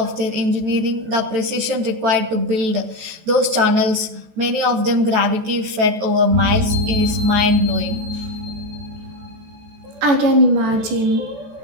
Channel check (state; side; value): late; left; 14 ms